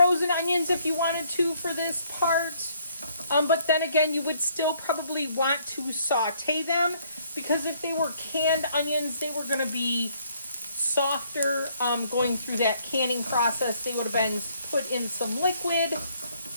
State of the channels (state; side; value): inverted; both; correlation -0.66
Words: onions if you wanted to for this part. But then again, you would still probably want to saute them, because if they were canned onions, they were going to be softer going through that canning process. They would have been put in some liquid.